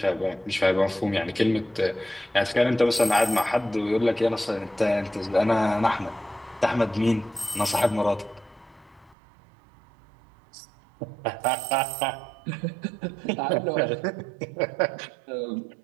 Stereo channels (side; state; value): left; drops out; at 9.2 s